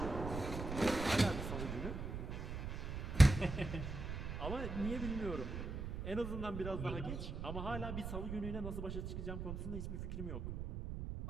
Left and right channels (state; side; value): noise; right; rumble, 5 dB below the sound